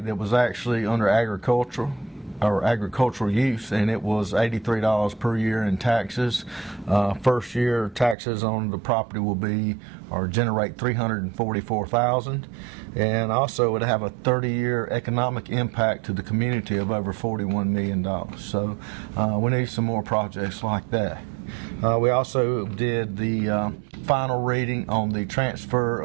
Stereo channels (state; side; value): drops out; left; at 8.2 s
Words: that was actually under agricultural use, and it was $83 per year in taxes. First year taxes on the property will be or generate $344,000, and also it would have a 30-year economic impact to the community of over $41 million. So we need some more projects like that. We also did the final reading on the transfer